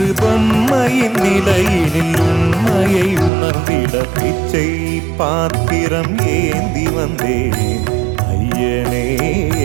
பொம்மையின் நிலையினில் உண்மையை உணர்ந்திட பிச்சை பாத்திரம் ஏந்தி வந்தேன் ஐயனே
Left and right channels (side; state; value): left; drops out; at 3.3 s